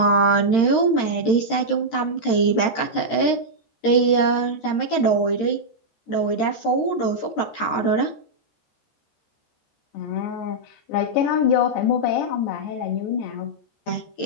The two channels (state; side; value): late; right; 13 ms